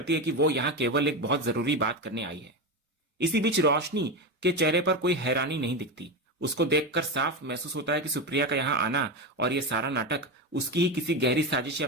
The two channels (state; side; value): normal; both; correlation 0.16